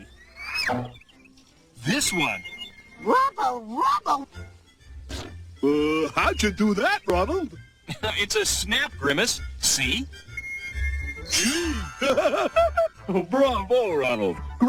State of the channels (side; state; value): both; identical; correlation 1.00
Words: This one. Rubble, rubble. How'd you do that, Ronald? It's a snap, Grimace. See? Bravo, Ronald.